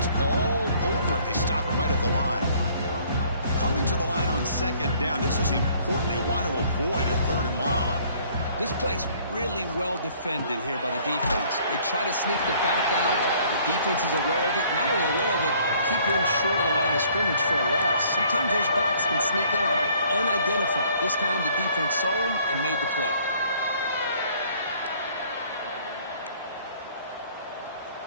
all over it. They stop him right at the line. Coming to the line on 2nd down. This is important. They want to avoid a 3rd and long. This play's really well defended here by the defense. They try to sneak the back out. The defense is aware of it. Not only aware of it, keep him short of the line of scrimmage for a loss. Sometimes those backs can sneak out unidentified. This time the defense saw him and made the play.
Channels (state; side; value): inverted; both; correlation -0.59